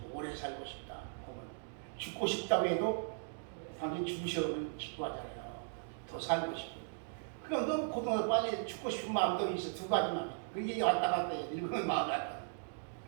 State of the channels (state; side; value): silent; left; digital silence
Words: 오래 살고 싶다. 보면 죽고 싶다고 해도 당신 죽으셔면 기뻐하잖아요. 더 살고 싶고. 그럼 너무 고통을 빨리 죽고 싶은 마음도 있어. 두 가지만. 그게 왔다 갔다 해요. 늙으면 마음이 왔다.